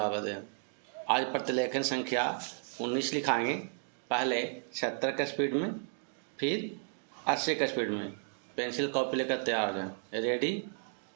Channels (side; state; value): left; silent; 55 dB below the other